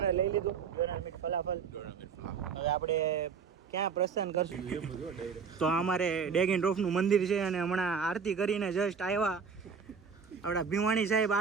લઈ લીધું. ફલાફલ. હવે આપણે ક્યાં પ્રસ્થાન કરશું? તો અમારે ડેગ એન્ડ ડ્રોપ નું મંદિર છે અને હમણાં આરતી કરીને જસ્ટ આવ્યા. આપણા ભીમાણી સાહેબ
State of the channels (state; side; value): quieter; left; 6.1 dB